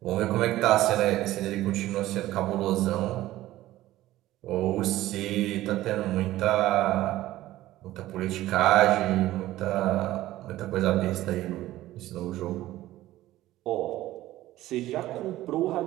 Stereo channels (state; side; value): quieter; left; 15.5 dB